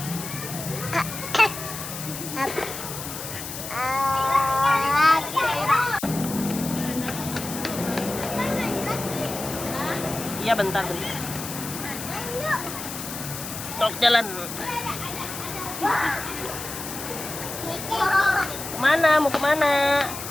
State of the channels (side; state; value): left; noise; hiss, 8 dB below the sound